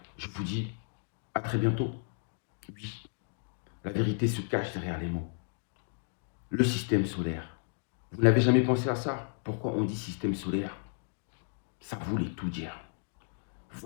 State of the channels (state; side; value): silent; right; digital silence